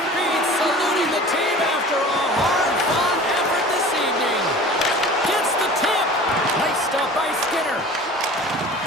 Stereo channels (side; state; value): both; normal; correlation 0.41